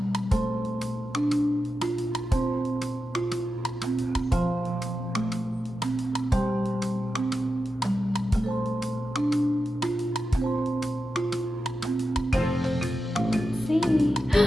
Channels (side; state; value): both; normal; correlation 0.89